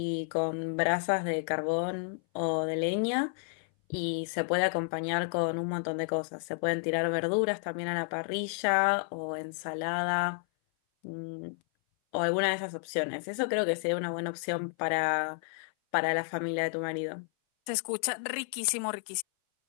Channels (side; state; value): right; silent; 56 dB below the other